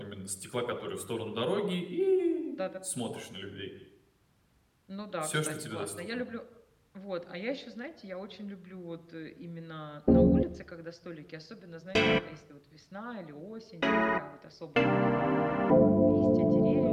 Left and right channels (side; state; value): both; identical; correlation 1.00